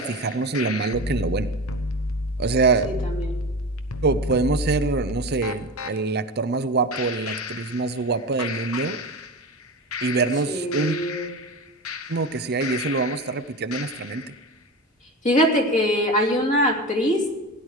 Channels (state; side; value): normal; both; correlation 0.26